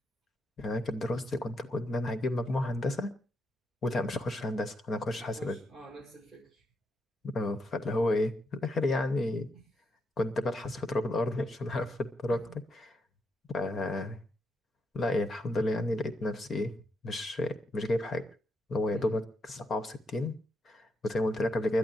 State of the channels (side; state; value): both; normal; correlation 0.81